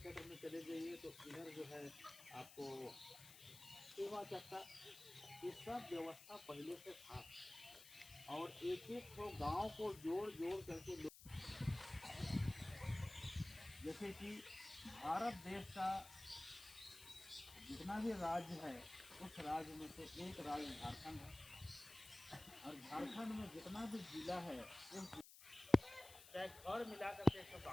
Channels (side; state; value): left; noise; hiss, 16 dB below the sound